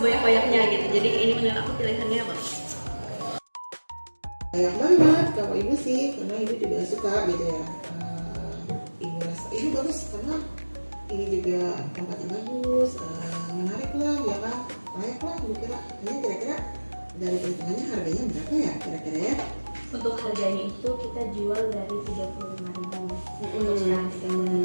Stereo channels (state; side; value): inverted; both; correlation -1.00